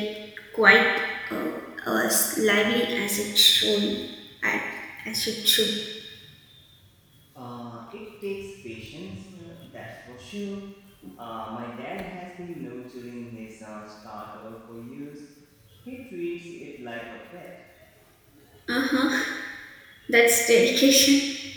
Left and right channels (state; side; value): identical; both; correlation 1.00